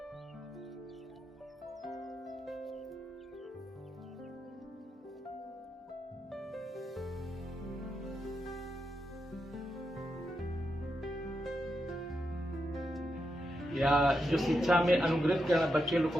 या जो शिक्षा में अनुग्रहित बच्चे लोग को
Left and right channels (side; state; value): both; normal; correlation 0.85